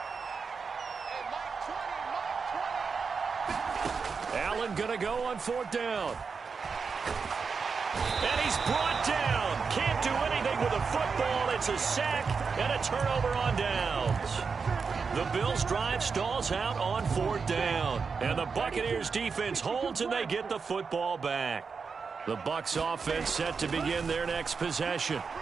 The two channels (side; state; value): left; quieter; 5.3 dB